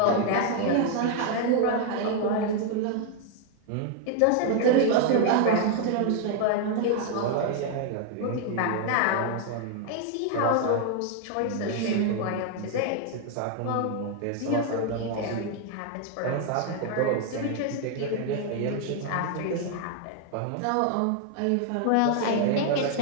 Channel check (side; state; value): both; different; correlation 0.00